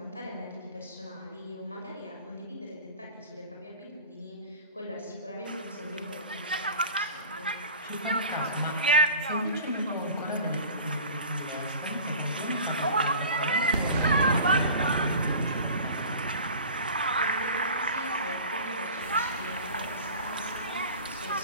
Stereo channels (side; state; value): both; inverted; correlation -0.40